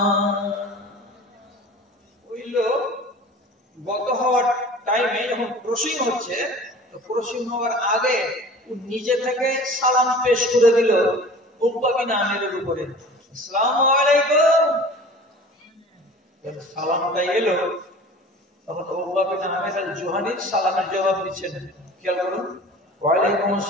ওই লোক গত হওয়ার টাইমে যখন ক্রসিং হচ্ছে, তো ক্রসিং হওয়ার আগে ও নিজে থেকে সালাম পেশ করে দিল উকবা বিন আমিরের উপরে, আসসালামু আলাইকুম। সালামটা এলো, তখন উকবা বিন আমির আল জুহানি সালামের জবাব দিচ্ছেন। খেয়াল করুন, ওয়ালাইকুম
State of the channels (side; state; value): both; normal; correlation 0.41